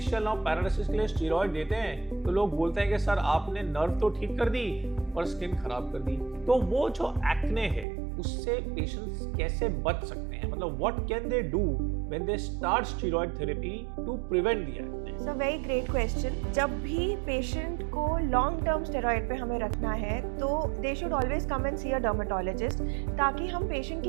और पैरालिसिस के लिए स्टेरॉइड देते हैं तो लोग बोलते हैं कि सर आपने नर्व तो ठीक कर दी पर स्किन खराब कर दी। तो वो जो एक्ने है उससे पेशेंट्स कैसे बच सकते हैं? मतलब what can they do when they start steroid therapy to prevent the acne? So very great question. जब भी पेशेंट को लॉन्ग टर्म स्टेरॉइड पे हमें रखना है तो they should always come and see a dermatologist, ताकि हम पेशेंट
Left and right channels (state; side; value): drops out; left; at 7.9 s